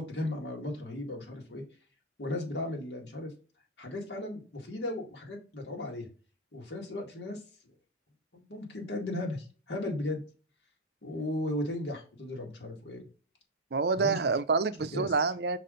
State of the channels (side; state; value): both; normal; correlation 0.02